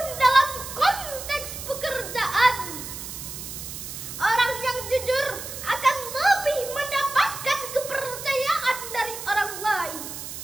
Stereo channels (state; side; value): noise; right; hiss, 9 dB below the sound